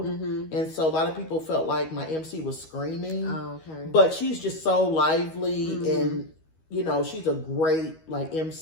and so a lot of people felt like my MC was screaming. Oh, okay. But she's just so lively and. She's a great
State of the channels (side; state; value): right; late; 13 ms